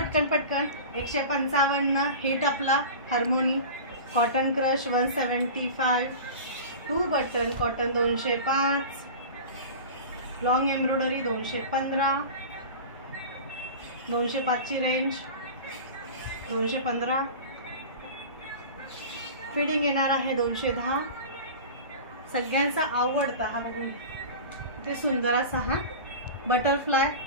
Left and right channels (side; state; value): both; inverted; correlation -0.33